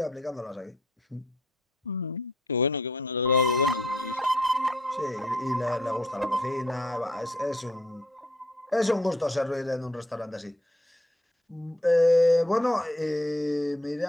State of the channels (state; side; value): normal; both; correlation 0.66